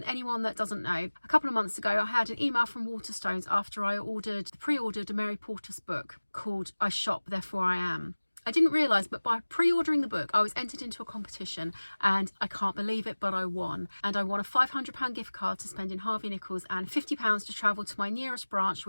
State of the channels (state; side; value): inverted; both; correlation -1.00